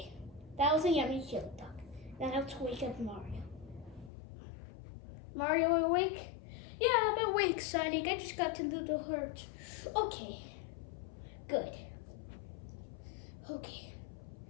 that was a yummy chili dog. Now let's wake up Mario. Mario awake? Yeah, I'm awake, Sonic. I just got to do the hurt. Okay, good. Okay,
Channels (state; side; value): drops out; right; at 4.1 s